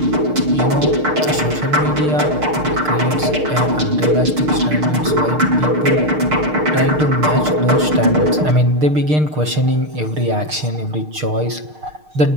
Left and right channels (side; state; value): left; late; 6.6 ms